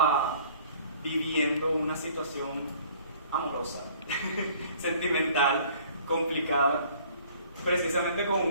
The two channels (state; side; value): inverted; both; correlation -0.54